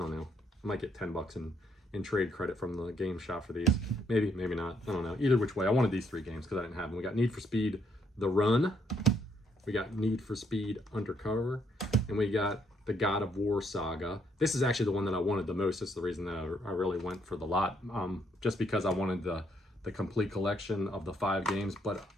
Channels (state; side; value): normal; both; correlation 0.71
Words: know. I might get $10 in trade credit from the game shop for these. Maybe not. I don't know. Either which way, I wanted these 3 games because I didn't have them. We got Need for Speed The Run. We got Need for Speed Undercover. And we got the God of War Saga. This is actually the one that I wanted the most. That's the reason that I really went for the lot. Just because I wanted the complete collection of the 5 games. But